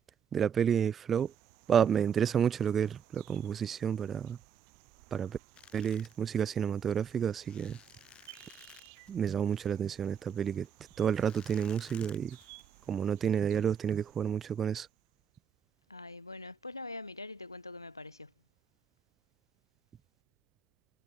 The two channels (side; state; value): left; quieter; 7.8 dB